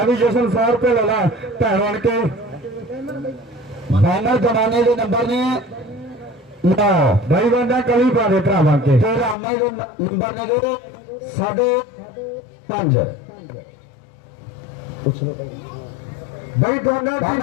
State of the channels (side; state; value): right; drops out; at 9.3 s